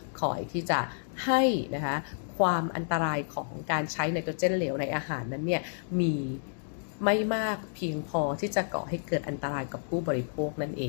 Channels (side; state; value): right; silent; digital silence